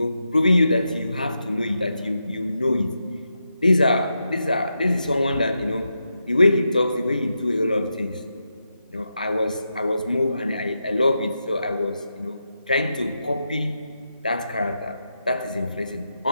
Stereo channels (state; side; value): inverted; both; correlation -0.86